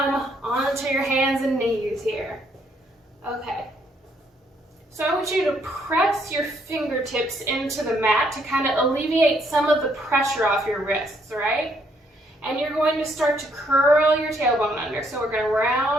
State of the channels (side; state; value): both; normal; correlation 0.70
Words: onto your hands and knees here. Okay. So I want you to press your fingertips into the mat to kind of alleviate some of the pressure off your wrists, right? And you're going to start to curl your tailbone under. So we're going to